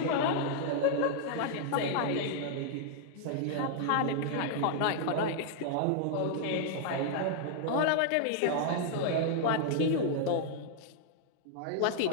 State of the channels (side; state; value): both; different; correlation -0.01